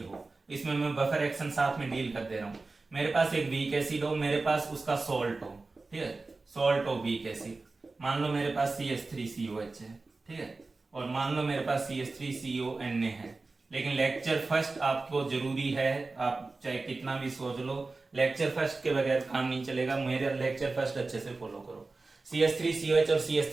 हो, इसमें मैं बफर एक्शन साथ में डील कर दे रहा हूं। मेरे पास एक वीक एसिड हो, मेरे पास उसका सॉल्ट हो, ठीक है, सॉल्ट ऑफ वीक एसिड, मान लो मेरे पास CH3COH है, ठीक है, और मान लो मेरे पास CH3CONA है। लेकिन लेक्चर फर्स्ट आपको जरूरी है, आप चाहे कितना भी सोच लो, लेक्चर फर्स्ट के बगैर काम नहीं चलेगा, मेरे लेक्चर फर्स्ट अच्छे से फॉलो करो। CH3COH और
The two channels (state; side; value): quieter; left; 3.6 dB